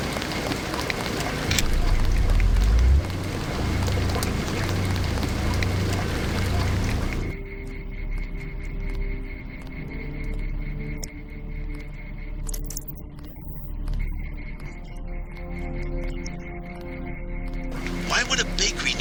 Why would a bakery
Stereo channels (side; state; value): both; identical; correlation 1.00